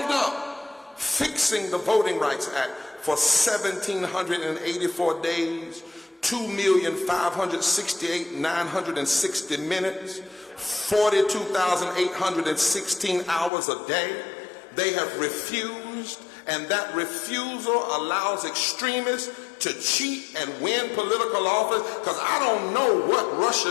up fixing the Voting Rights Act for 1,784 days, 2,568,960 minutes, 42,816 hours a day. They have refused, and that refusal allows extremists to cheat and win political office, because I don't know what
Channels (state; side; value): drops out; right; at 13.5 s